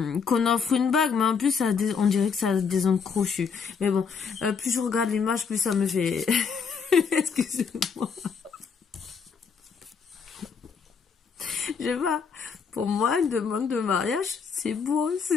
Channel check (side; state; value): right; quieter; 5.9 dB